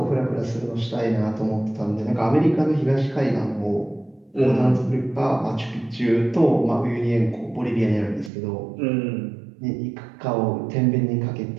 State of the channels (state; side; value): drops out; left; at 8.3 s